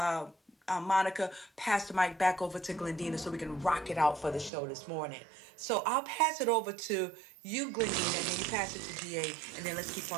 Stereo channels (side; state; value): left; drops out; at 4.5 s